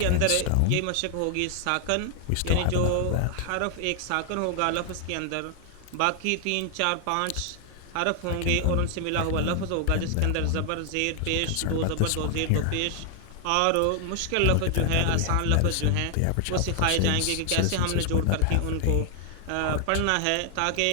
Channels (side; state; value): both; different; correlation 0.00